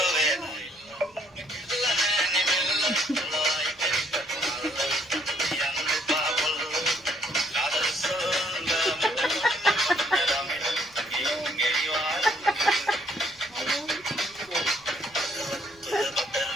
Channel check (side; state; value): right; noise; rumble, 30 dB below the sound